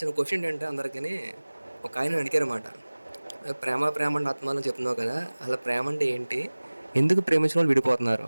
క్వశ్చన్ ఏంటంటే అందరికీ ఒక ఆయన అడిగారన్నమాట. ప్రేమ ప్రేమ అంటే ఆత్మానం చెప్తున్నావు కదా, అలా ప్రేమ అంటే ఏంటి? ఎందుకు ప్రేమించిన వాళ్ళు విడిపోతున్నారు?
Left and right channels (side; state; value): both; inverted; correlation -1.00